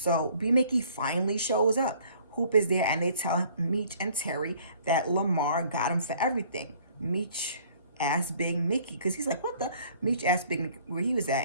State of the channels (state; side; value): inverted; both; correlation -0.56